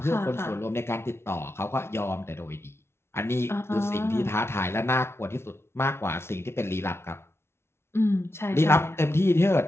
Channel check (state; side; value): late; right; 0.12 ms